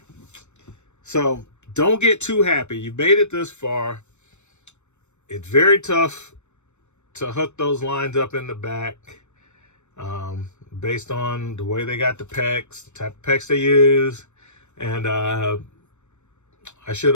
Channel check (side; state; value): right; late; 0.83 ms